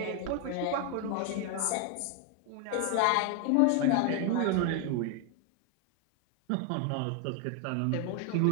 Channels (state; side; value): different; both; correlation 0.01